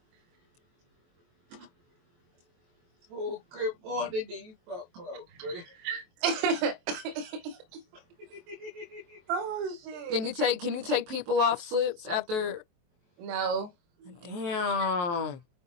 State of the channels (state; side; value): late; left; 23 ms